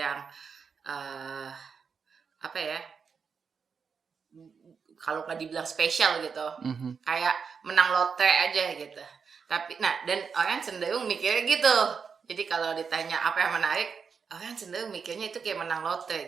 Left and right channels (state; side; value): quieter; left; 5.9 dB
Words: apa ya? Kalau nggak dibilang spesial gitu, kayak menang lotre aja gitu. Tapi, dan orang cenderung mikirnya gitu. Jadi kalau ditanya apa yang menarik, orang cenderung mikirnya itu kayak menang lotre